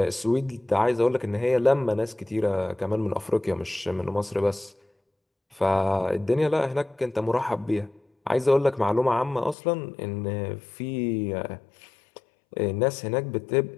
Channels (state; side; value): drops out; right; at 9.6 s